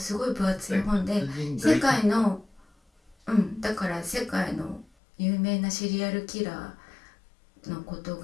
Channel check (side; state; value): right; drops out; at 4.9 s